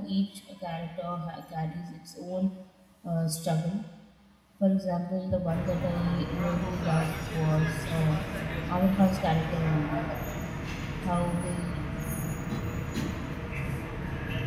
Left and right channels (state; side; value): identical; both; correlation 1.00